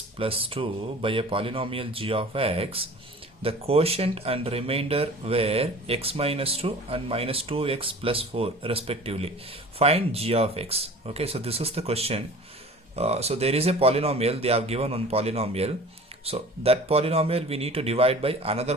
plus 2 by a polynomial g of x, the quotient and remainder were x minus 2 and minus 2x plus 4 respectively. Find g of x. Okay, so this is the question. So there is a polynomial, they have given one polynomial. So that polynomial we need to divide by another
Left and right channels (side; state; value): both; normal; correlation 0.42